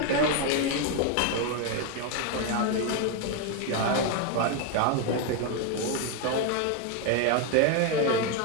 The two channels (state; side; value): different; both; correlation 0.02